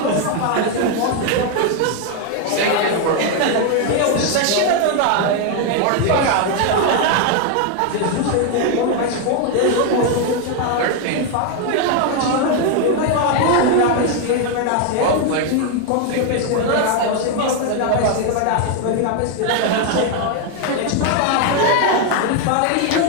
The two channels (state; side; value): different; both; correlation 0.01